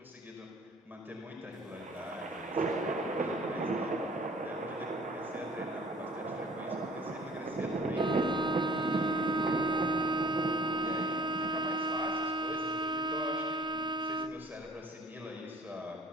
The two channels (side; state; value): both; normal; correlation 0.51